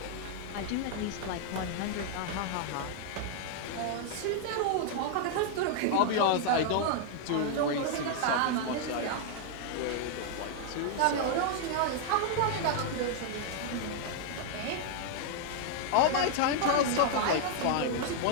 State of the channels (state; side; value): different; both; correlation 0.00